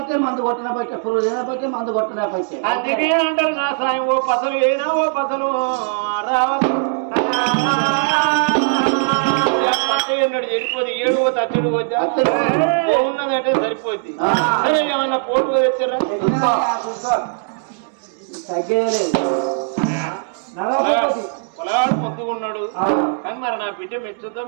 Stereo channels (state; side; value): silent; left; 66 dB below the other